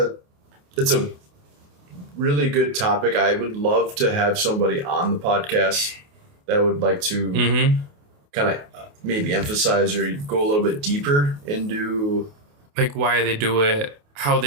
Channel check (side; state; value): left; late; 28 ms